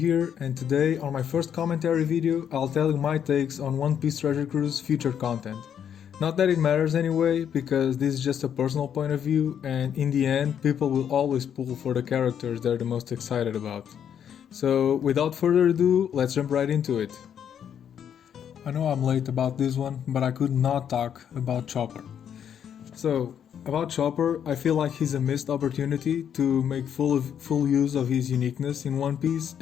and today on my first commentary video I'll tell you my takes on One Piece Treasure Cruise future content. Not that it matters anyway, because this is just a personal point of view, and in the end people will always pull for the characters they're the most excited about. So without further ado, let's jump right into it. I know I'm late about this one, but I could not talk about Chopper. So, about Chopper, I feel like he's a missed opportunity to make full use of his uniqueness in One Piece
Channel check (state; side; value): quieter; right; 8.7 dB